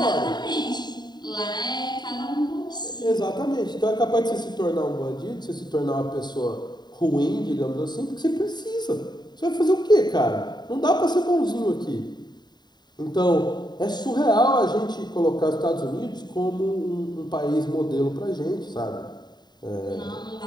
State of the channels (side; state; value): right; late; 0.21 ms